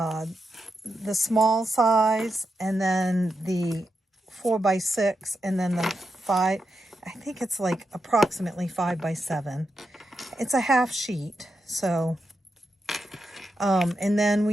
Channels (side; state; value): both; normal; correlation 0.86